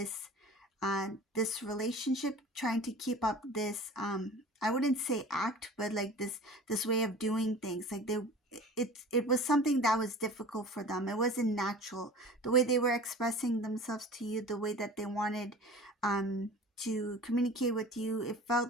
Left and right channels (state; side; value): normal; both; correlation 0.41